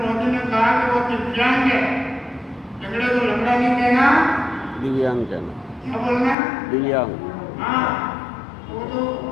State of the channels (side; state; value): right; drops out; at 6.4 s